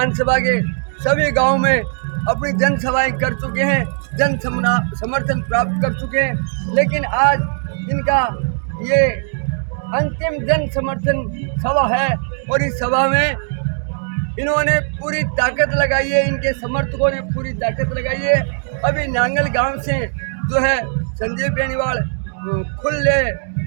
के सभी गांव में अपनी जनसभाएं कर चुके हैं, जन समर्थन प्राप्त कर चुके हैं, लेकिन आज इनका ये अंतिम जन समर्थन सभा है और इस सभा में इन्होंने पूरी ताकत लगाई है, इनके समर्थकों ने पूरी ताकत लगाई है। अभी नांगल गांव से जो है संजीव बेनीवाल खुले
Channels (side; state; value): left; silent; digital silence